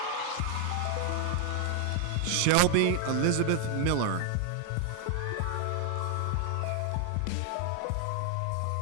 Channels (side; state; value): both; different; correlation 0.00